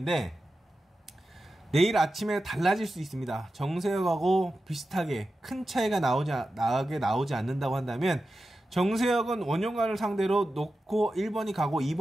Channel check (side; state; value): both; normal; correlation 0.92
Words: 내일 아침에 달라질 수 있습니다. 정세혁하고 비슷하게 큰 차이가 나오지 않는다고 한다면 정세혁은 원형관을 상대로 놓고 1번이 가고